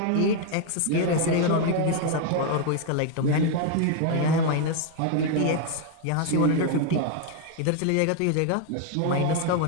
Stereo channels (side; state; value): both; different; correlation 0.01